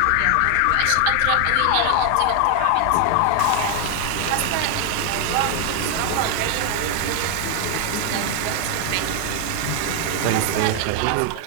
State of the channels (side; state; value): both; different; correlation 0.00